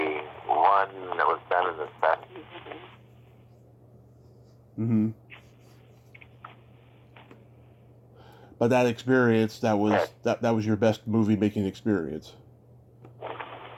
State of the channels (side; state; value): both; identical; correlation 1.00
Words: one that was done in the 70s. Mm-hmm. But that experience, that was your best movie making experience.